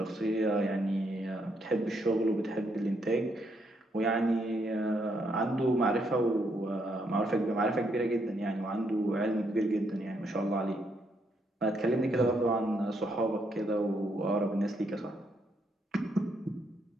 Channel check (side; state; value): both; normal; correlation 0.75